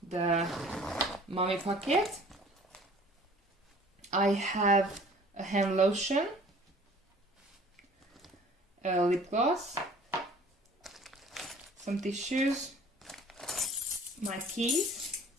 the mommy pocket. I have a hand lotion, a lip gloss, some tissues, my keys,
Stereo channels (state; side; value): normal; both; correlation 0.50